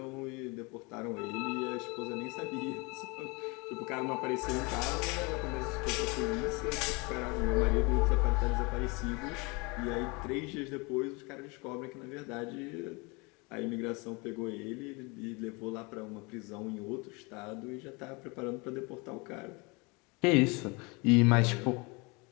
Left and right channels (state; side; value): quieter; right; 28.2 dB